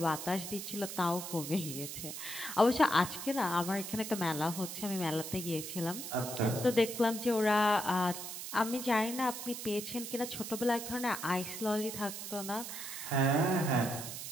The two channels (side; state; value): right; noise; hiss, 7 dB below the sound